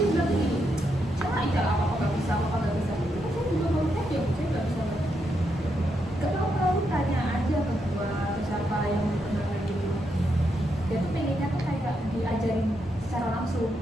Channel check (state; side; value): normal; both; correlation 0.81